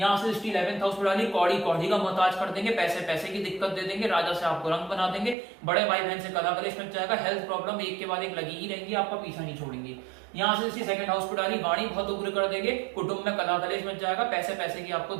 से दृष्टि 11th हाउस पर डाली, कौड़ी कौड़ी का मोहताज कर देंगे, पैसे पैसे की दिक्कत दे देंगे, राजा से आपको रंग बना देंगे, बड़े भाई बहन से कला कलेश मच जाएगा, हेल्थ प्रॉब्लम एक के बाद एक लगी ही रहेंगी, आपका पीछा नहीं छोड़ेंगी। यहाँ से इसकी 2nd हाउस पर डाली, वाणी बहुत उग्र कर देंगे, कुटुंब में कला कलेश मच जाएगा, पैसे पैसे की आपको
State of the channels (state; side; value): drops out; left; at 5.4 s